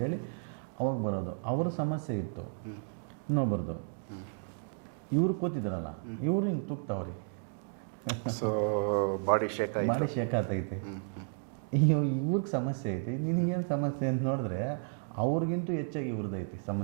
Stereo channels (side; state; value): left; silent; digital silence